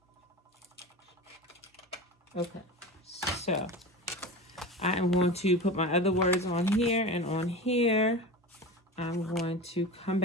Okay, so I am going to put my other words on here and on here. I'm going to come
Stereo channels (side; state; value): both; normal; correlation 0.29